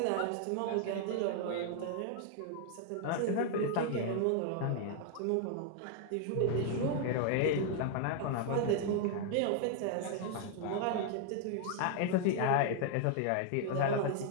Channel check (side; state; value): both; different; correlation 0.00